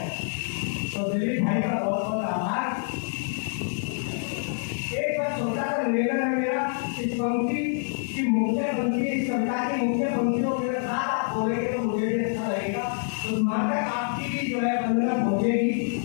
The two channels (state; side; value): silent; right; 61 dB below the other